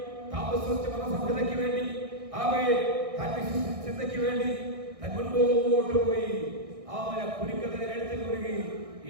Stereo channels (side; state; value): left; late; 1.6 ms